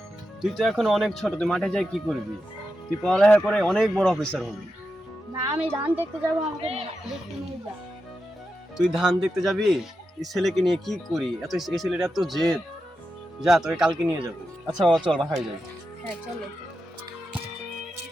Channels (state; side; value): normal; both; correlation 0.88